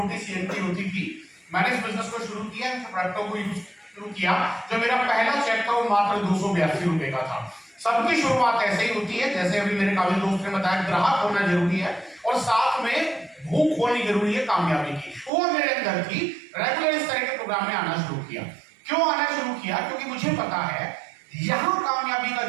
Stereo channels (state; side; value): drops out; left; at 15.3 s